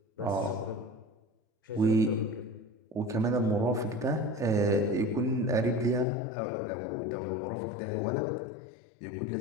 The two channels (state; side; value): drops out; right; at 6.1 s